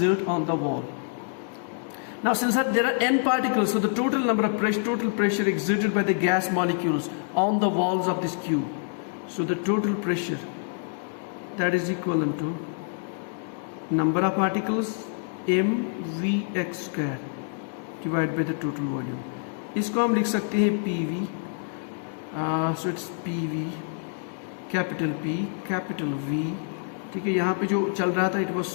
on the wall. Now since there are n particles, so the total number of total pressure exerted by the gas molecules on the walls of this cube. So the total pressure, that is equivalent to number of particles mvx square divided by the total volume. इसको हम लिख सकते हैं PV. So it's PV, capital P, capital V. ठीक है? यहाँ पे जो चल रहा था, it was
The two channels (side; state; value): right; silent; 60 dB below the other